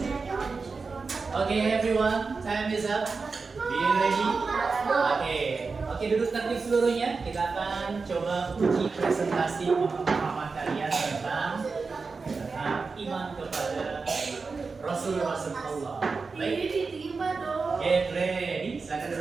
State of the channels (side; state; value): left; quieter; 4.5 dB